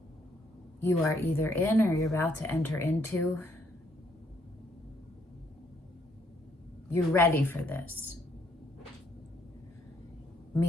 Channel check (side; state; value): both; normal; correlation 0.70